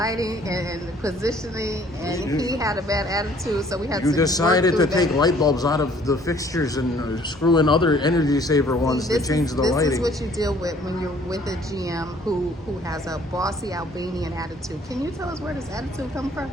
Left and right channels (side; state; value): both; normal; correlation 0.58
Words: and the positioning, and he had a bad attitude, so we had to. You decided to take light bulbs out of the fixtures and screw in other energy saver ones to change the lighting. This is what you deal with when you're with a GM who has a bossy Albanian attitude. Can you tell us where this attitude comes from?